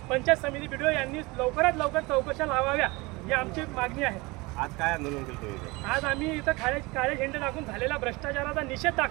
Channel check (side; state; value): left; quieter; 24.1 dB